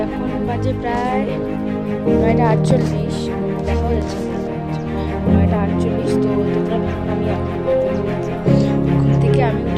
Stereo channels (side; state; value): both; identical; correlation 1.00